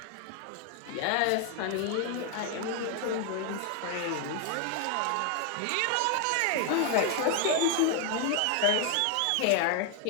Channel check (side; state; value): both; different; correlation 0.00